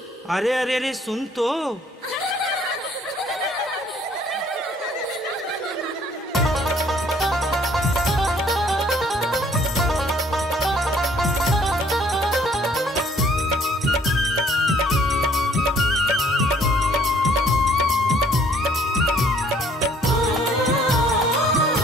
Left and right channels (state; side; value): normal; both; correlation 0.60